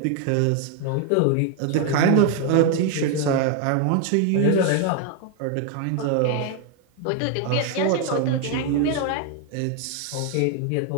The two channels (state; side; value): different; both; correlation 0.01